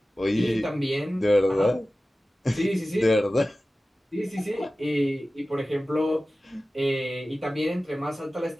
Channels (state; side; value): normal; both; correlation 0.96